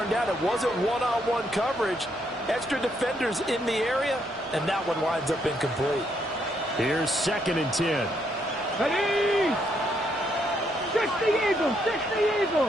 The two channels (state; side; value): normal; both; correlation 0.74